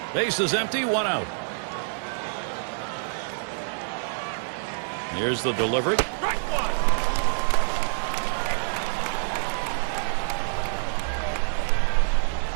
Base is empty, 1 out. Here's the delivery.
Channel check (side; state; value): left; silent; 61 dB below the other